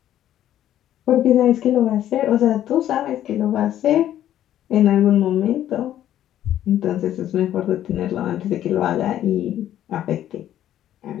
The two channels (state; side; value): quieter; right; 11.8 dB